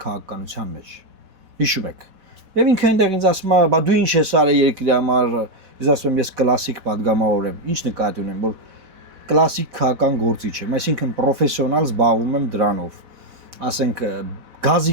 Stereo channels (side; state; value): left; late; 4.1 ms